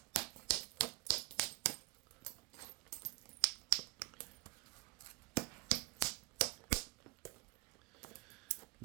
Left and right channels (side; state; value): left; quieter; 24.3 dB